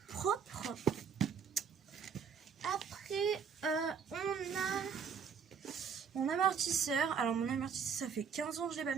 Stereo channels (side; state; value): left; quieter; 6.6 dB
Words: propre. Après, on a mon amortisseur. Alors, mon amortisseur, ça fait 15 ans que je l'ai pas